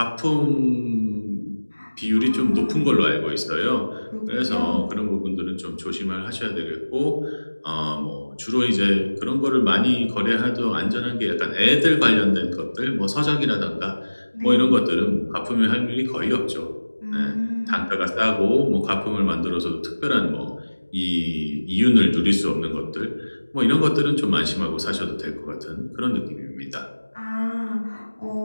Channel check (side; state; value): both; inverted; correlation -1.00